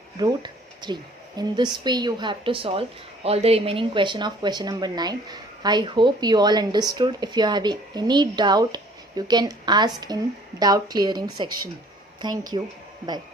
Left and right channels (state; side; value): normal; both; correlation 0.55